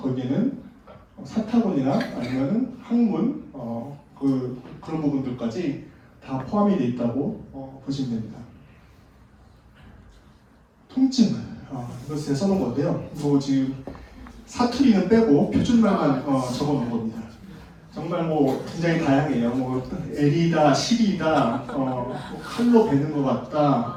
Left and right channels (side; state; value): both; identical; correlation 1.00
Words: 사타구니나 아니면은 항문 그런 부분들까지 다 포함이 되어 있다고 보시면 됩니다. 통증, 이거 제가 써놓은 건데요. 이거 지금 사투리는 빼고 표준말만 적어놓은 겁니다. 정말 뭐 굉장히 다양해요. 뭐 L이다, 실이다, 칼로 베는 것